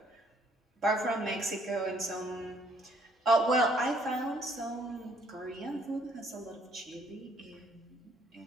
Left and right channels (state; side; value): normal; both; correlation 0.64